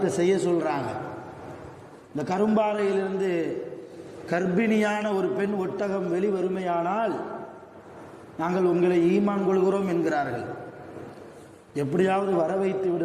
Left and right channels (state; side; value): identical; both; correlation 1.00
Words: செய்ய சொல்கிறாங்க. இந்த கரும்பாறையிலிருந்து கர்ப்பிணியான ஒரு பெண் ஒட்டகம் வெளிவருமையானால் நாங்கள் உங்களை ஈமான் கொள்கிறோம் என்கிறார்கள். எப்படியாவது வர வைத்து